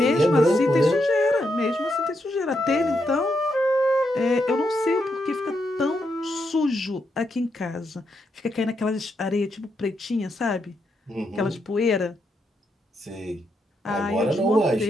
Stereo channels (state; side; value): normal; both; correlation 0.81